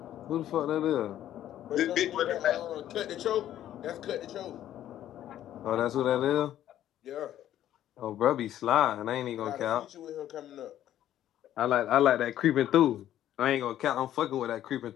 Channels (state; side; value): quieter; right; 12.0 dB